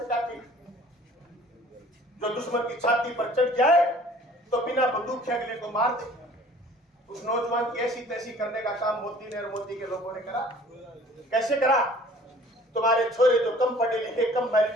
है कि जो दुश्मन की छाती पर चढ़ जाए तो बिना बंदूक के अगले को मार दे। उस नौजवान की ऐसी तैसी करने का काम मोदी ने और मोदी के लोगों ने करा। कैसे करा? तुम्हारे छोरे जो कम पढ़े लिखे, कम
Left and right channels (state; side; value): normal; both; correlation 0.51